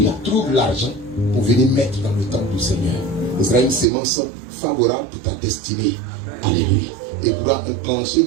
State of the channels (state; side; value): drops out; left; at 3.9 s